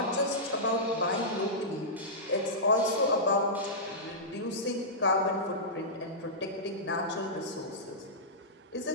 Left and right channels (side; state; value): both; normal; correlation -0.14